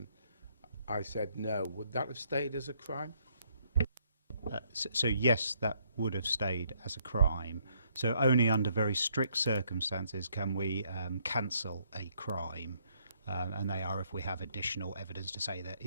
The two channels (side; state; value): both; inverted; correlation -0.70